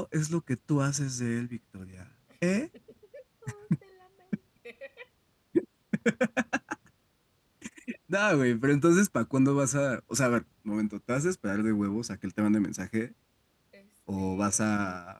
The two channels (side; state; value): both; identical; correlation 1.00